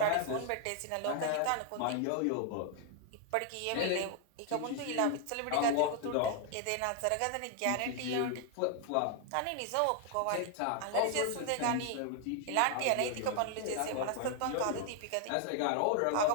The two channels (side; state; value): both; different; correlation 0.00